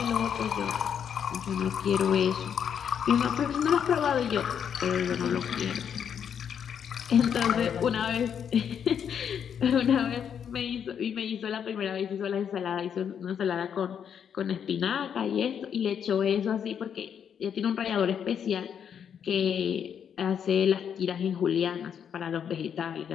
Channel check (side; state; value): right; quieter; 8.1 dB